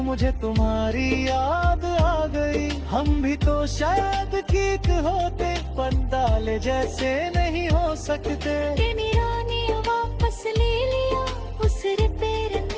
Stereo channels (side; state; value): both; identical; correlation 1.00